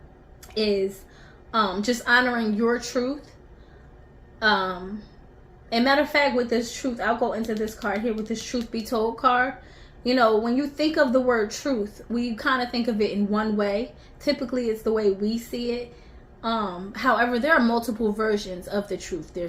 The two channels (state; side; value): identical; both; correlation 1.00